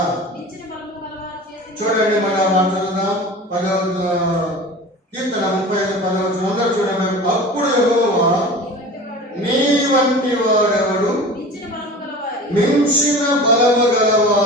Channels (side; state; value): both; normal; correlation 0.37